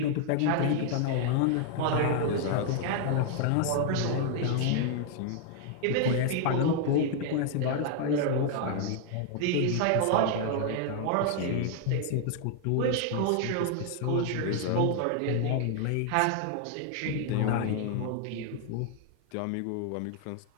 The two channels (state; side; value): different; both; correlation 0.00